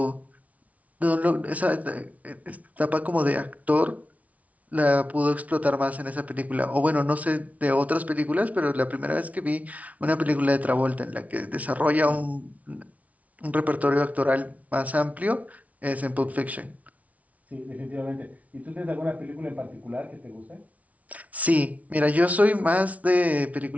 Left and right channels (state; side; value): late; left; 0.069 ms